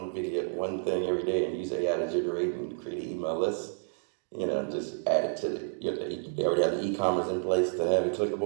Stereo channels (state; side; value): silent; left; digital silence